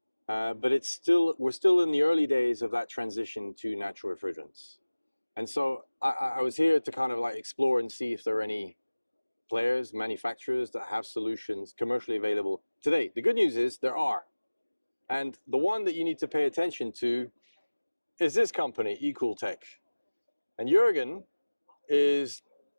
but we're still in the early days of that transition to natural refrigerants. And so I was here to kind of like explore and see if there are any players, manufacturers that have solutions commercially available today. The good news is there are. And the one that you need to pay attention to is this company, Ecooltec. And Jurgen is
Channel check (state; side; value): inverted; both; correlation -1.00